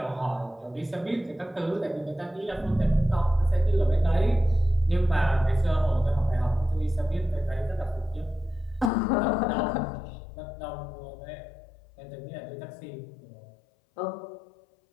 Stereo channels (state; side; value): drops out; right; at 8.9 s